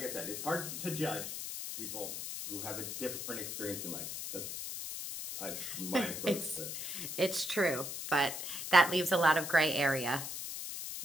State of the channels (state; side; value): noise; left; hiss, 6 dB below the sound